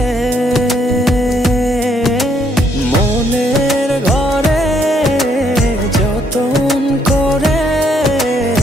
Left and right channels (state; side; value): normal; both; correlation 0.70